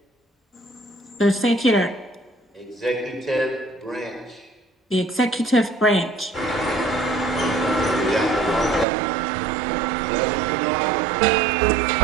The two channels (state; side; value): drops out; left; at 8.8 s